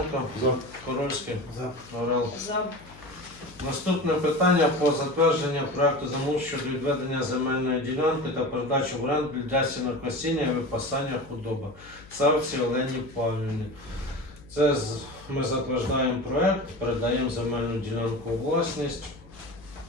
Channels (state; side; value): noise; left; hum, 22 dB below the sound